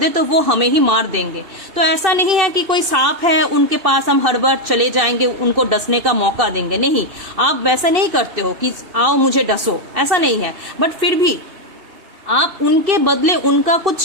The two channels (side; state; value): left; late; 2.6 ms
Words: तो वो हमें ही मार देंगे। तो ऐसा नहीं है कि कोई सांप है उनके पास हम हर बार चले जाएंगे, उनको डसने का मौका देंगे, नहीं, आप वैसा नहीं करते हो कि आओ मुझे डसो, ऐसा नहीं है। बट फिर भी आप उनके बदले उनका कुछ